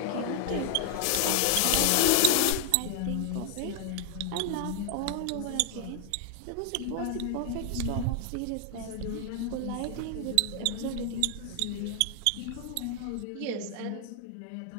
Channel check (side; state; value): both; different; correlation 0.00